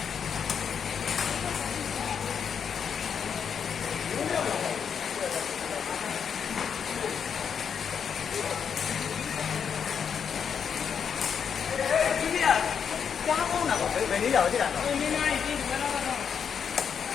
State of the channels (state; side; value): quieter; right; 7.2 dB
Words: ကြားကောင်းတာပေါ့ဘယ်နည်းရောက်ကြည့်တာတော့နည်းနည်းကြည့်ဘယ်တော့တော့